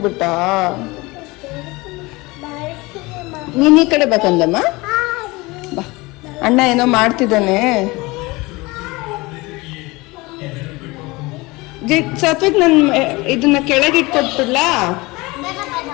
ನೀನ್ ಈ ಕಡೆ ಬೇಕಂದಮ್ಮ, ಬಾ ಅಣ್ಣ ಏನೋ ಮಾಡ್ತಿದ್ದಾನೆ. ಸಾತ್ವಿಕ್ ನನ್ ಇದನ್ನ ಕೆಳಗೆ ಇಟ್ಕೊಟ್ಬಿಡ್ಲಾ?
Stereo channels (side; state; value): right; quieter; 23.1 dB